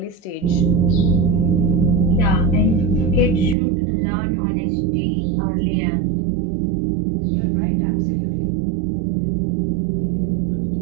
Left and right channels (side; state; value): left; drops out; at 3.6 s